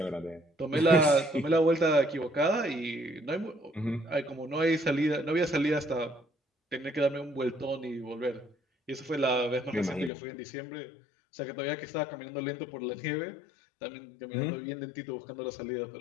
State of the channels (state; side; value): drops out; right; at 10.1 s